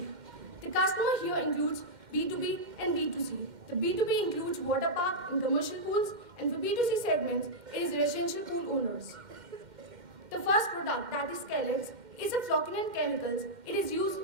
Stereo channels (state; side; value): late; left; 2.1 ms